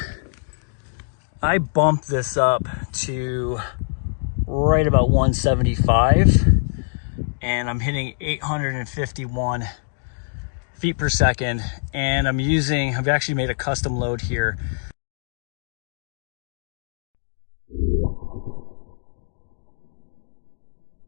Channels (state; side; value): silent; right; digital silence